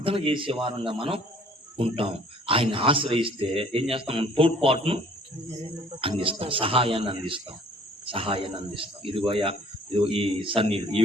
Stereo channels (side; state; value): both; normal; correlation 0.55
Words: చేసే వారంగా మనం ఉంటాం. ఆయన ఆశ్రయిస్తే ఏం చేస్తాం? మనం తోడ్పాటును అందిస్తాం, సహాయాన్ని అందిస్తాం. ఇదిగోయా, ఇదిగో ఈ సన్నీళ్ళు, ఈ